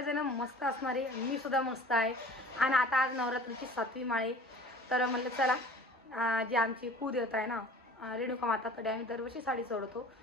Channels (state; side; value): normal; both; correlation 0.44